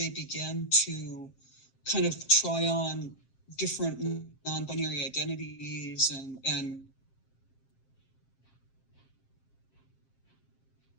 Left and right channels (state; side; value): late; right; 7.6 ms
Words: began to kind of try on different non-binary identities and